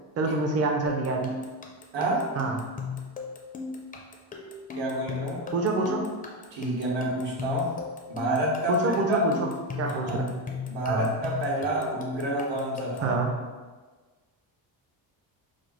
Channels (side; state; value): both; normal; correlation 0.13